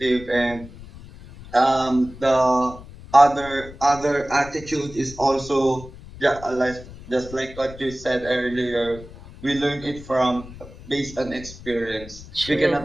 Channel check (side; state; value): left; noise; rumble, 16 dB below the sound